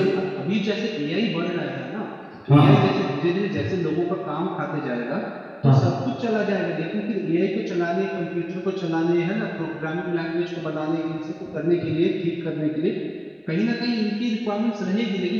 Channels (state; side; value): identical; both; correlation 1.00